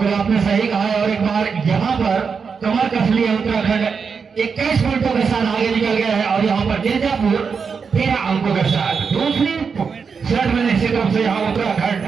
आपने सही कहा है। और एक बार यहाँ पर कमर कस लिया उत्तराखंड, 21 पॉइंटों के साथ आगे निकल गया है, और यहाँ पर मिर्जापुर 13 अंकों के साथ दूसरी शर्ट में निश्चित रूप से यहाँ उत्तराखंड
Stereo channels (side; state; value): left; quieter; 5.7 dB